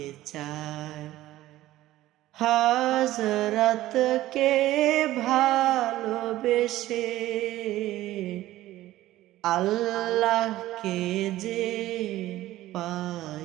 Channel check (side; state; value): left; quieter; 15.4 dB